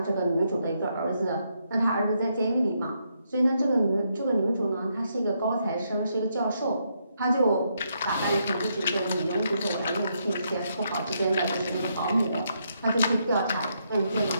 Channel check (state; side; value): inverted; both; correlation -0.78